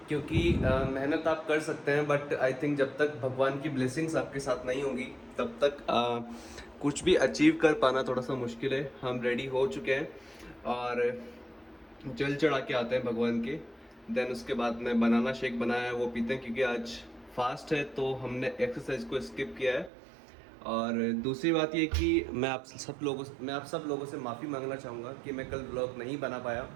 क्योंकि मेहनत आप कर सकते हैं, बट आई थिंक जब तक भगवान की ब्लेसिंग्स आपके साथ नहीं होंगी तब तक कुछ भी अचीव कर पाना थोड़ा सा मुश्किल है। हम रेडी हो चुके हैं और जल चढ़ा के आते हैं भगवान के। देन उसके बाद में बनाना शेक बनाया है, वो पीते हैं क्योंकि आज फास्ट है, तो हमने एक्सरसाइज को स्किप किया है। और दूसरी बात ये कि मैं आप सब लोगों से माफ़ी मांगना चाहूँगा कि मैं कल व्लॉग नहीं बना पाया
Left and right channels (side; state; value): left; drops out; at 19.9 s